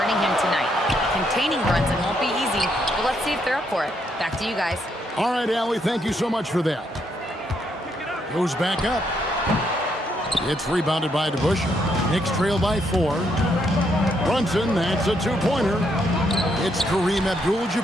him tonight. Containing Brunson won't be easy, but let's see if they're up for it. Back to you guys. All right, Allie, thank you so much for that. Goes back up. It's rebounded by DeBusschere. Knicks trail by 4. Brunson, that's a 2-pointer. It's Kareem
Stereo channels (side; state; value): both; normal; correlation 0.75